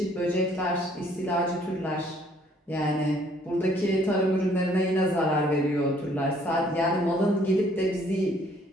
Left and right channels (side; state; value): both; normal; correlation 0.62